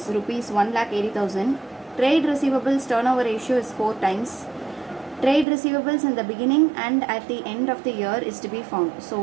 rupees 1,80,000. Trade receivables turnover ratio is 4 times. Trade receivables in the beginning and at the end of the year is to be found. So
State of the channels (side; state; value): left; drops out; at 5.5 s